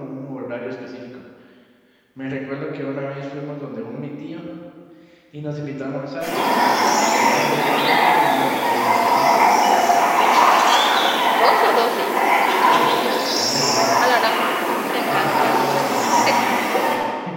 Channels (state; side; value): identical; both; correlation 1.00